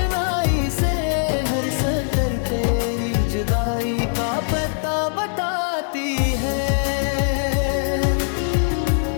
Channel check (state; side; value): silent; right; digital silence